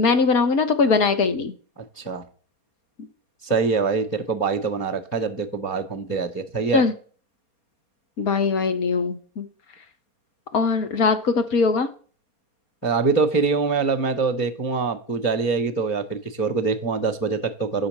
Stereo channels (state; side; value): late; right; 4.3 ms